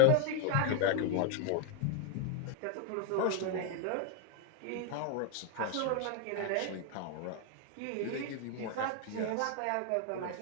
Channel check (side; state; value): both; different; correlation 0.01